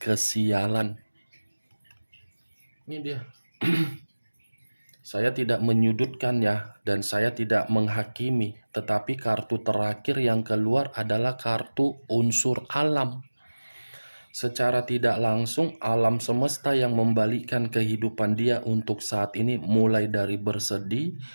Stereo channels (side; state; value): both; inverted; correlation -1.00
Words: Ini dia. Saya tidak menyudutkan ya, dan saya tidak menghakimi. Tetapi kartu terakhir yang keluar adalah kartu unsur alam. Secara tidak langsung, alam semesta yang membalikkan kehidupan dia untuk saat ini, mulai dari bersedih,